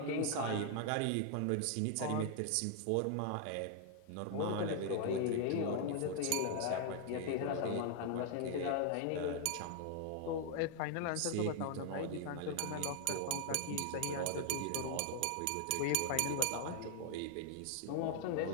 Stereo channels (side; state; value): both; different; correlation 0.00